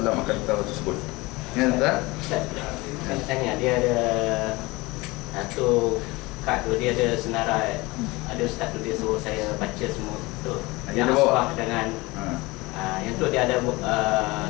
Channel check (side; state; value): right; quieter; 22.5 dB